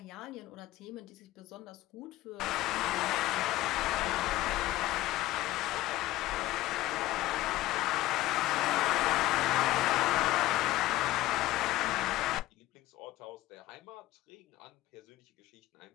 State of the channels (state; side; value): quieter; right; 16.5 dB